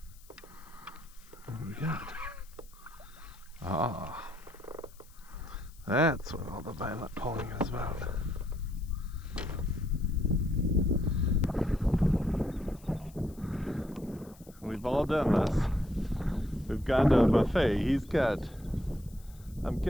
What do we got? Ah, that's what all the violent pulling is about. We've all done this. We've gone to a buffet. He's got, I'm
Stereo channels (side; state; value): left; noise; hiss, 25 dB below the sound